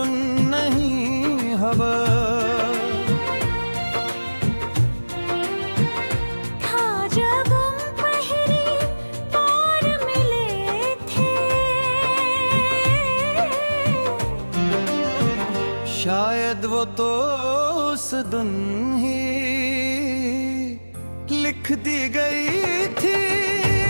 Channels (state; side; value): inverted; both; correlation -1.00